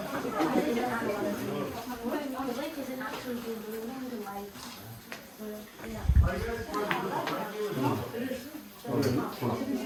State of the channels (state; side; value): identical; both; correlation 1.00